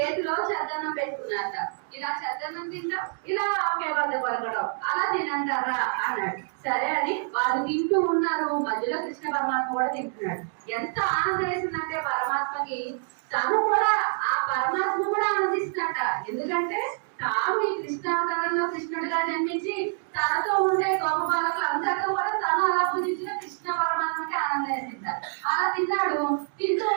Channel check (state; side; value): silent; left; 60 dB below the other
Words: చద్దన్నం పెట్టుకున్నారట. ఇలా చద్దన్నం తింటాం, ఇలా ఆవకాయ బద్ద కొరకడం, అలా తినంటారా అన్నాడు. సరే అని వాళ్ళు తింటూ ఉన్నారు, మధ్యలో కృష్ణ పరమాత్మ కూడా తింటున్నాడు. ఎంత ఆనందం వేసిందంటే పరమాత్మకి, తను కూడా ఆ పరమాత్మ కూడా ఆనందిస్తున్నట. ఎందుకంటే తాను ఈ కృష్ణావతారంలో కృష్ణుడిగా జన్మించి తనతో ఉండే గొప్ప బాలకులు అందరితో కూడా తను అలా పూజించిన కృష్ణ పరమాత్మకి ఆనందం వేసింటారు. అలా తిన్నాడు. తింటూ